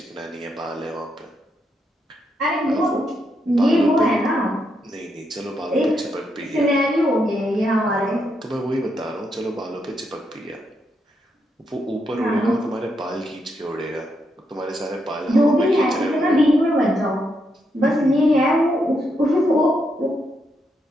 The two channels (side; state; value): both; normal; correlation 0.80